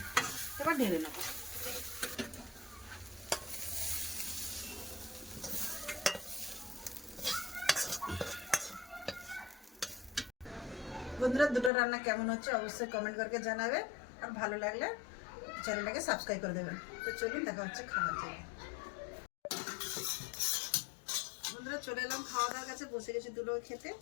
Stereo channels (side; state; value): right; drops out; at 11.7 s